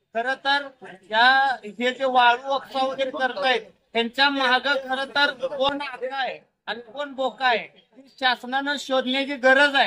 खरं तर हे जे वाळू उपसा वगैरे करतायत त्यांच्या माग खरं तर कोण आगा आहे आणि कोण बोका आहे शासनानं शोधण्याची गरज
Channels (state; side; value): identical; both; correlation 1.00